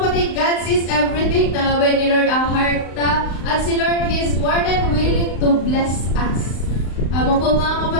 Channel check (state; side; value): late; right; 35 ms